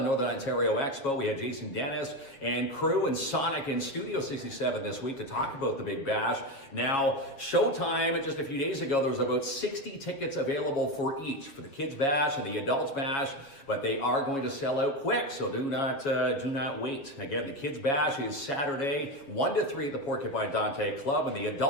Ontario Expo. We had Jason Dennis and crew and Sonic in Studio 67 this week to talk about the Big Bash. Now, showtime, just a few days ago, there was about 60 tickets available for each, for the Kids Bash and the Adults Bash, but they are going to sell out quick, so do not wait. Again, the Kids Bash is Saturday, 1 to 3 at the Porcupine Dante Club, and the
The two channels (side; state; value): right; late; 7.2 ms